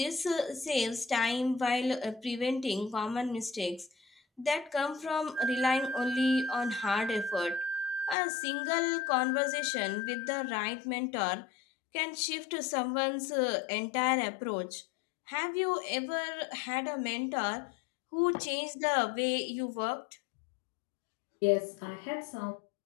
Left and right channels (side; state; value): right; drops out; at 8.2 s